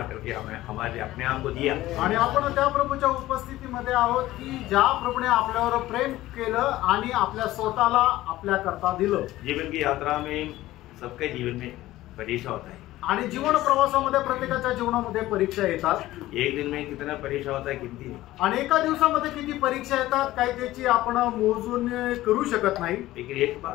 करके हमें हमारे अपने आप को दिया आणि आपण त्या प्रभूच्या उपस्थितीमध्ये आहोत की ज्या प्रभूने आपल्यावर प्रेम केलं आणि आपल्या स्वतःला आपल्या करता दिलं। जीवन की यात्रा में सबके जीवन में परीक्षा होता है आणि जीवन प्रवासामध्ये प्रत्येकाच्या जीवनामध्ये परीक्षा येतात। एक दिन में कितना परीक्षा होता है गिनती नहीं। आणि एका दिवसामध्ये किती परीक्षा येतात काय त्याची आपण मोजून करू शकत नाही। लेकिन एक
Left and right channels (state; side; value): quieter; right; 16.1 dB